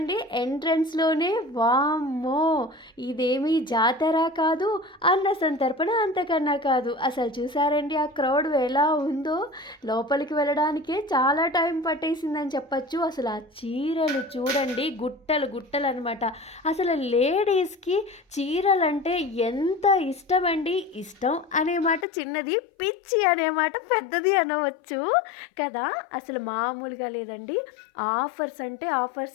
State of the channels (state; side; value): drops out; right; at 22.1 s